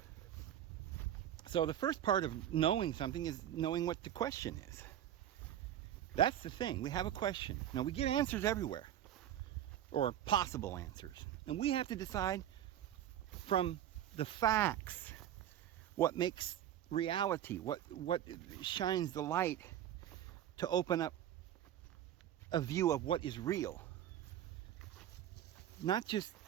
So the first part of knowing something is knowing what the question is. That's the thing. We have a question. Now, we get answers everywhere, or possible answers. And we have to decide from the facts what makes reality, what shines the light to open up a view of what is real. Not just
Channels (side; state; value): left; quieter; 11.1 dB